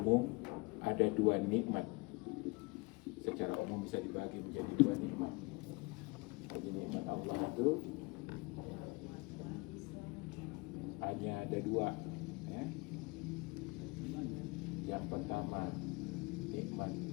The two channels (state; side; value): quieter; right; 27.1 dB